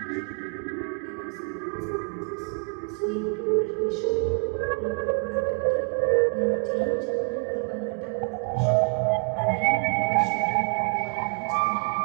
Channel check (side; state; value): left; quieter; 39.3 dB